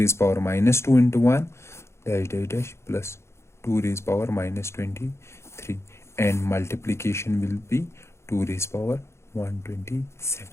power -2 into 1 dash dash dash plus 2 raised power -23, and multiplication will be 2 raised power 127.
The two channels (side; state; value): right; late; 0.13 ms